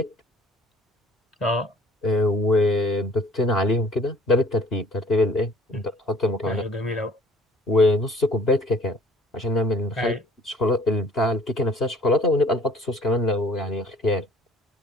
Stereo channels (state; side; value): normal; both; correlation 0.54